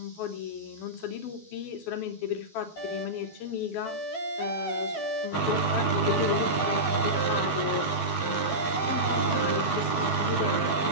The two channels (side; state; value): right; late; 12 ms